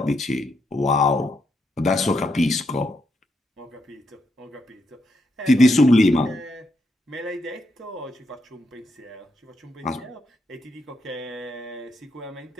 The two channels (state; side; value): normal; both; correlation 0.80